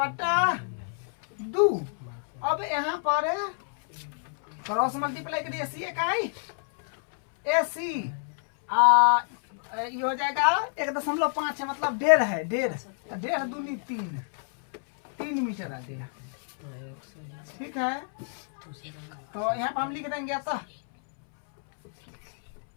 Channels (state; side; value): silent; right; 59 dB below the other